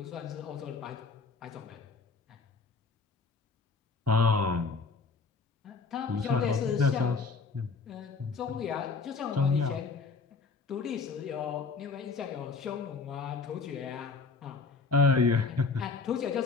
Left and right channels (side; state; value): right; quieter; 4.5 dB